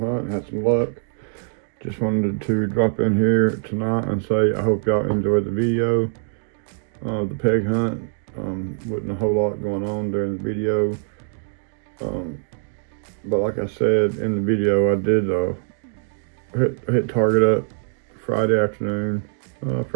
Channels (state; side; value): silent; left; digital silence